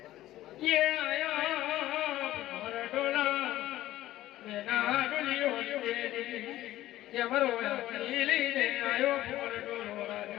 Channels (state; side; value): quieter; right; 14.8 dB